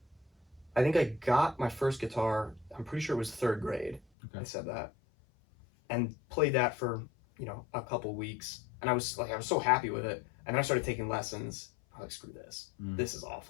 I think I got my first guitar, I'm pretty sure it was 3rd grade. Okay. I said that. And played that for, a couple weeks. And I was so happy with it. And then I started taking lessons. I was like, screw this. This is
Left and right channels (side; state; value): right; drops out; at 4.0 s